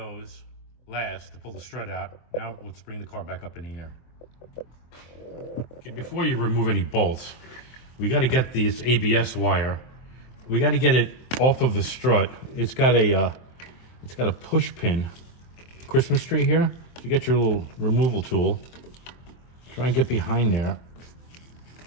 last to pull the strut out. Now let's bring the car back up in the air. Okay, before you remove any bolts, we got to get this ABS wire. We got to get it off of the strut. It's got a push pin, Christmas tree here. So you get your little removal tool. Try and get behind there.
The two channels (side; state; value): right; late; 24 ms